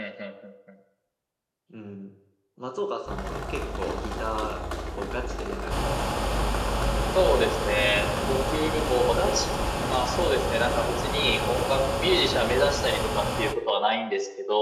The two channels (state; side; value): identical; both; correlation 1.00